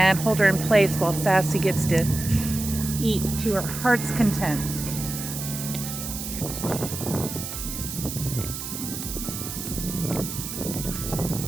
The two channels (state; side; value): noise; right; hiss, 7 dB below the sound